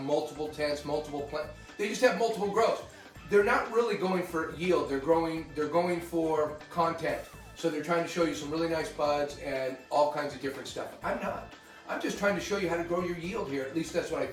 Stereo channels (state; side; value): identical; both; correlation 1.00